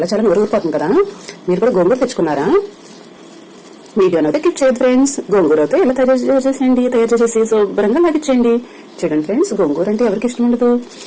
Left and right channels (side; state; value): both; identical; correlation 1.00